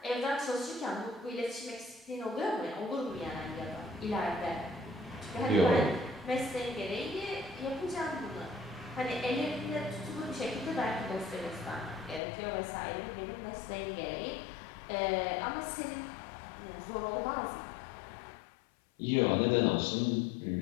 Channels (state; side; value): drops out; right; at 12.2 s